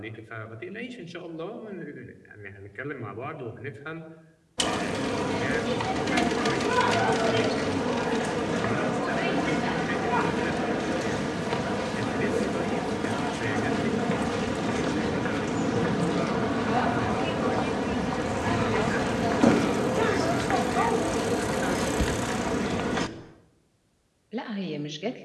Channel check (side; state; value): both; identical; correlation 1.00